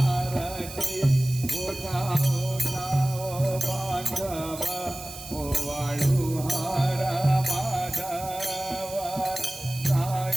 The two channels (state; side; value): noise; right; hiss, 13 dB below the sound